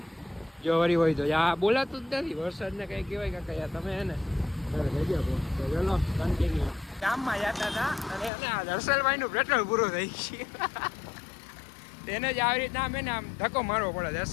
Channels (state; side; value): drops out; right; at 8.3 s